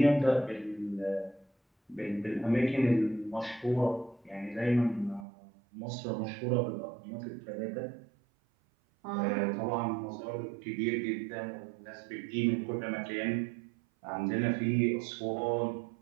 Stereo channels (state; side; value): drops out; left; at 5.2 s